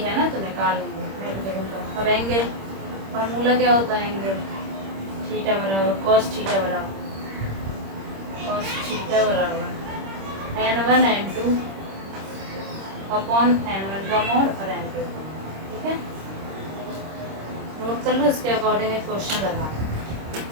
ना, तो निकाल लेंगे। अब एंगल फार्मूला क्या होता है? एंगल थीटा बराबर cos थीटा बराबर n1 n2 अपॉन n1 का मोड और n2। ठीक है, नोट कर लो। इसके अकॉर्डिंग एक क्वेश्चन लगा।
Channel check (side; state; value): left; late; 26 ms